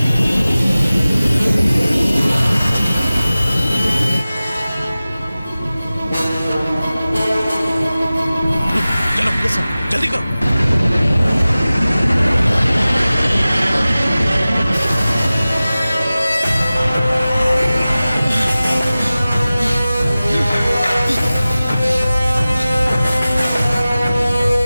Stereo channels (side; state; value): both; inverted; correlation -0.97